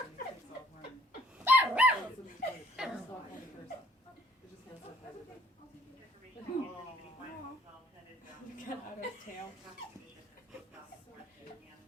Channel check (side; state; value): both; normal; correlation 0.62